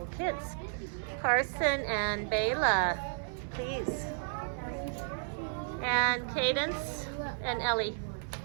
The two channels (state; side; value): silent; left; digital silence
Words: kids. Carson and Bayla, please. And Cadence and Ellie.